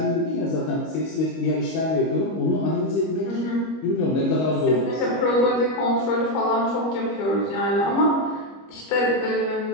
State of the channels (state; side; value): late; right; 25 ms